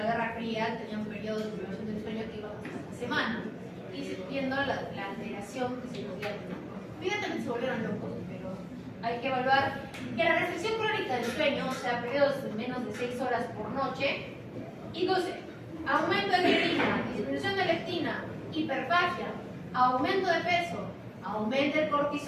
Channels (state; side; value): identical; both; correlation 1.00